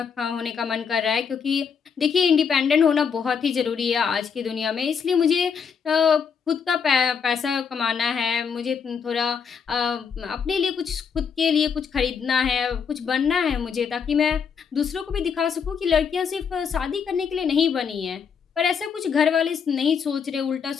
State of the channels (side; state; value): right; quieter; 6.5 dB